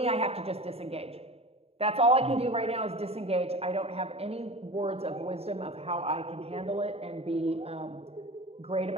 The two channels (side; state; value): left; late; 0.29 ms